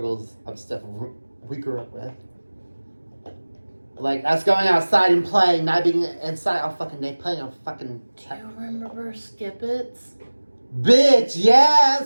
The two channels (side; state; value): both; inverted; correlation -1.00